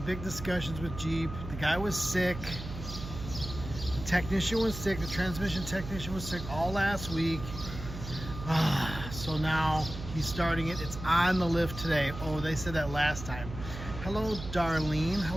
big discussions with Jeep. The guy was sick. The technician was sick. The transmission technician was sick all last week. So now he's starting it. It's on the lift today. Oh, they said that last time. Hello, Darlene.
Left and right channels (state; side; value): noise; right; hum, 9 dB below the sound